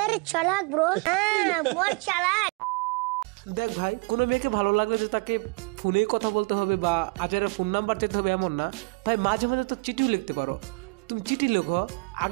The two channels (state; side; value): quieter; left; 28.8 dB